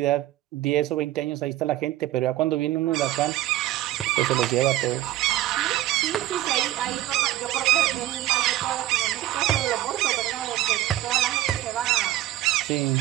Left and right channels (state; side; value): quieter; left; 14.4 dB